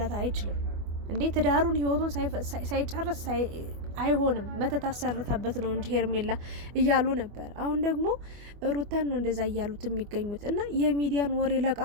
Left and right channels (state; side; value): late; left; 25 ms